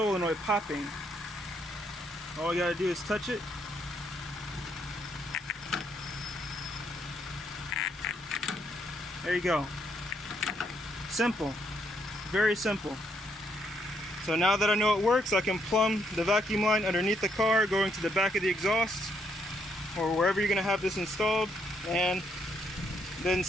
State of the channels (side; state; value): both; normal; correlation 0.74